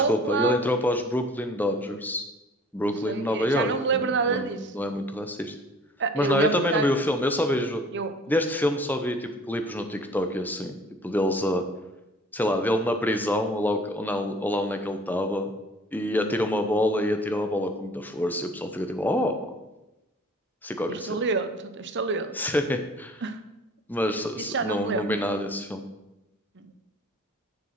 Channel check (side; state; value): both; normal; correlation 0.50